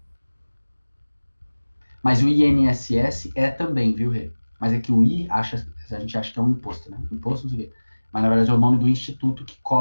Mas o INSS é também, viu, Rê? Mas é que o I, a gente acha que é um imposto, né? Imposto, não sei o quê. Mas na verdade é o nome do instituto que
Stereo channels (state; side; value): inverted; both; correlation -1.00